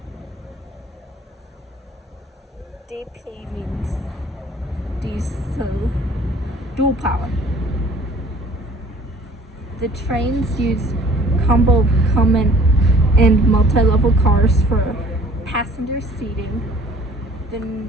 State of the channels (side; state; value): both; normal; correlation 0.53